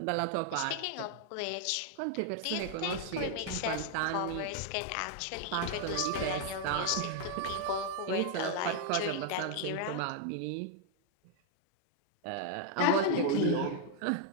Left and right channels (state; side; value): different; both; correlation 0.00